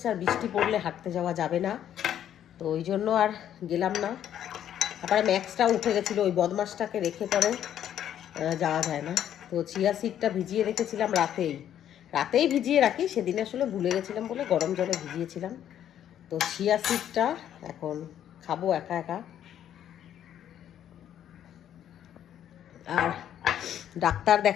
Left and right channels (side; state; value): right; quieter; 10.4 dB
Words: আর বৃষ্টি পড়লে হাঁটতে যাওয়া যাবে না, তো ওই জন্য আর গেলাম না। তারপরে ম্যাক্সটাও উঠে গেছিলো, ওই বদমাসটাকে রেখে পরে যাওয়া যায় না। তো চিয়া সিডটা ভিজিয়ে রেখেছিলাম রাতেই ভিজিয়ে রাখি, সেদিন আসলে ভুলে গেছিলাম বলে গরম জলে ভিজিয়েছিলাম। তো চিয়া সিডটা এখন খাবো একা একা। আর ডাক্তার